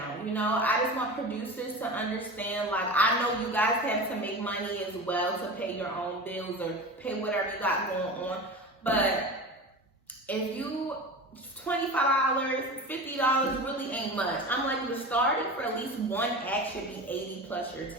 You know, I just want producers to understand, like, I know you guys have to make money as well to pay your own bills or pay whatever you got going on. But if you, $25, $50 really ain't much. I'm like, the starting for at least one act should be 80 plus your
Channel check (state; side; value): normal; both; correlation 0.30